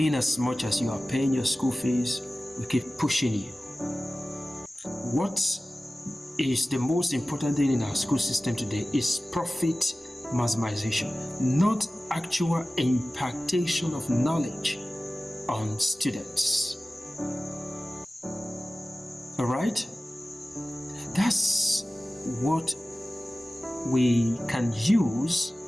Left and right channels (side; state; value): both; normal; correlation 0.96